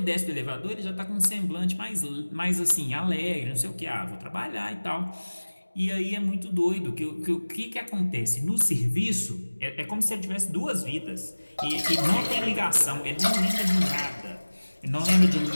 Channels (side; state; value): both; inverted; correlation -1.00